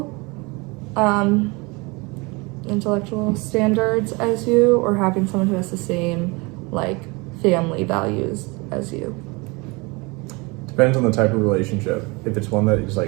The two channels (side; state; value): left; quieter; 26.8 dB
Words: standards as you, or having someone who has the same like family values as you? Depends on the type of relationship. If it's one that is